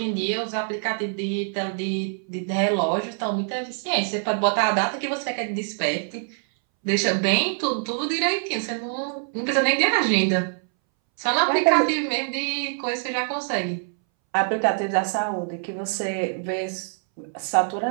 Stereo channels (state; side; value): silent; left; 62 dB below the other